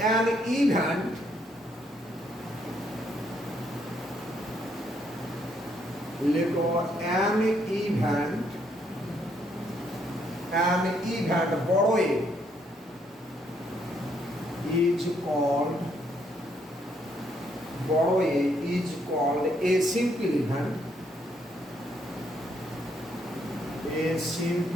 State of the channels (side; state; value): both; normal; correlation 0.72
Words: অ্যান ইভেন্ট, লেখো অ্যান ইভেন্ট, অ্যান ইভেন্ট বড় এ is called, বড় এ is called a simple event, a